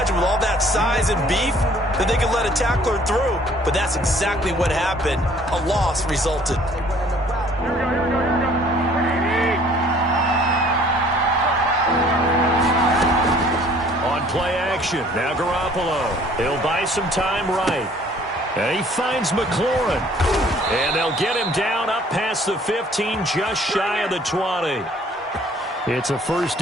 with all that size and beef that they could let a tackler through. But that's exactly what happened. A loss resulted. On play action, now Garoppolo. He'll buy some time right. And he finds McLaurin. And they'll get him down up past the 15, just shy of the 20. It's a first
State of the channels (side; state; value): both; normal; correlation 0.56